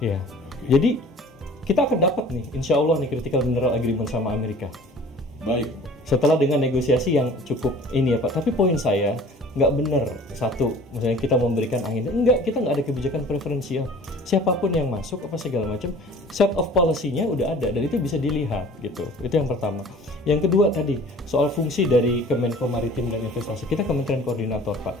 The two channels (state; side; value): normal; both; correlation 0.47